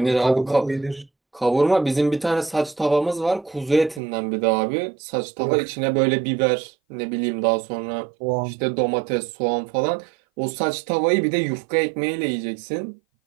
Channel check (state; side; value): drops out; left; at 4.0 s